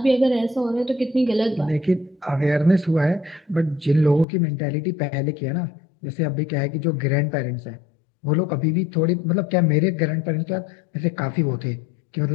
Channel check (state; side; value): drops out; right; at 4.2 s